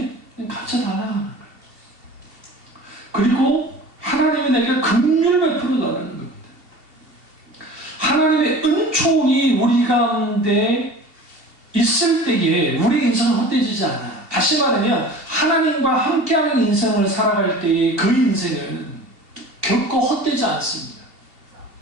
가르쳐달라는 거예요. 그리고 하나님이 내게 긍휼을 베풀어달라는 겁니다. 하나님의 은총이 우리 가운데 있을 때에 우리 인생은 헛되지지 않아. 다시 말하면 하나님과 함께하는 인생을 살아갈 때의 그 인생은 결코 헛되지 않습니다.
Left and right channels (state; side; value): late; left; 2.7 ms